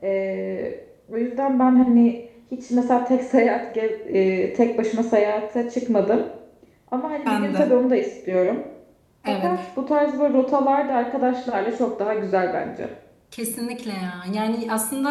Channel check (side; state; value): both; identical; correlation 1.00